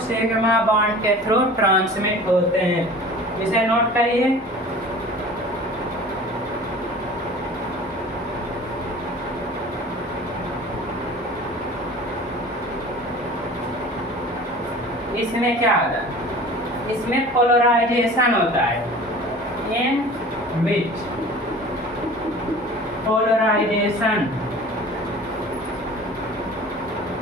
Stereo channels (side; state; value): both; normal; correlation 0.42